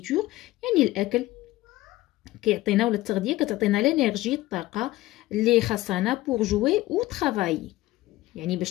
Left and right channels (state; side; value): quieter; right; 17.3 dB